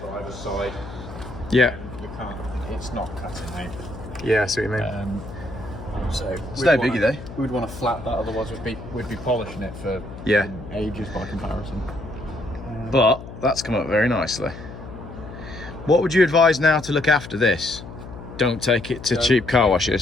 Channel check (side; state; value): left; noise; hum, 13 dB below the sound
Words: the driver's side. Yeah. We can't, it's not cutting out. Yeah, I see what you mean. So it's no biggie though. We'd want to flat that, otherwise we'd be polishing it for ages by comparison. But that's come up very nicely. What would you advise now to look after this? Don't take it to cheap car